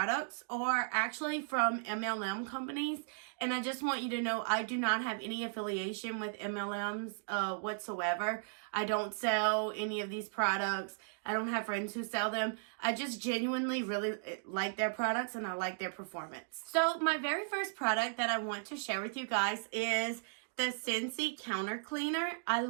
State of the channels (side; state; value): left; silent; digital silence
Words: are actually from MLM companies, and I just want you to know I do not have any affiliation with MLMs whatsoever. I don't sell any of these products. I don't have friends who sell them. I just genuinely really like their products and I like their performance. So my very first product that I want to share with you guys is the Scentsy counter cleaner. I